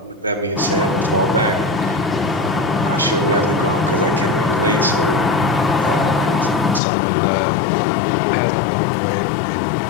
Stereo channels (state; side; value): drops out; right; at 6.8 s